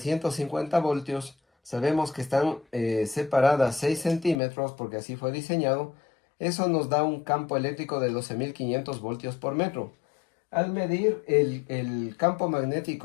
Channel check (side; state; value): right; drops out; at 4.4 s